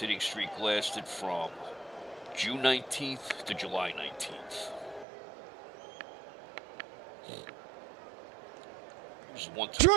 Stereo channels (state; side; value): drops out; left; at 5.1 s